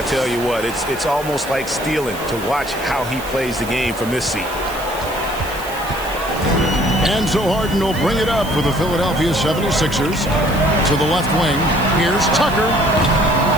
tell you what, it's almost like stealing to watch how he plays the game from this seat. And so Harden will bring it up for the Philadelphia 76ers. To the left wing. Here's Tucker.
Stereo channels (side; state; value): right; noise; hiss, 15 dB below the sound